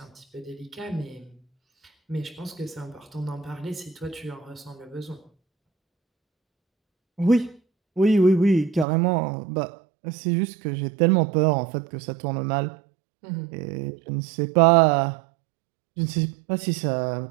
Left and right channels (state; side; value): drops out; left; at 8.8 s